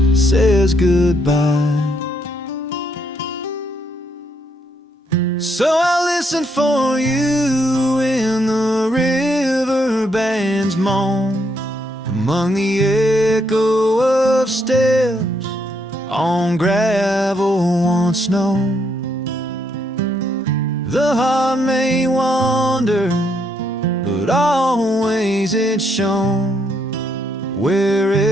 says goodbye. So I listen for you in the river band's moan, among the echo of steps on gravel once known. The heart may wander, but always it's shown.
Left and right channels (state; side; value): normal; both; correlation 0.74